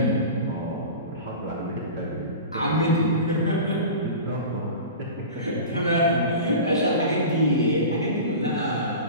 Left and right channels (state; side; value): inverted; both; correlation -0.33